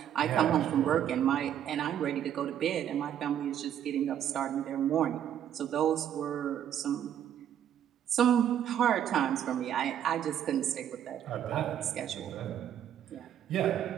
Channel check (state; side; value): quieter; left; 10.0 dB